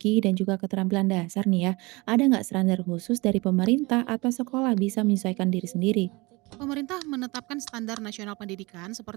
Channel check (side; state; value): left; quieter; 24.6 dB